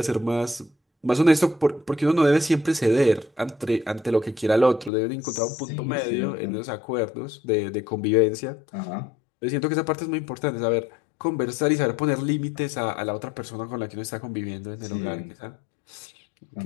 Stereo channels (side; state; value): right; drops out; at 4.9 s